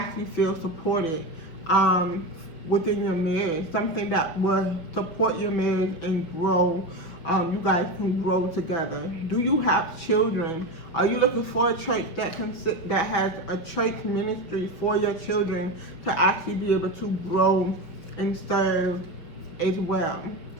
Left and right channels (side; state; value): right; late; 5.9 ms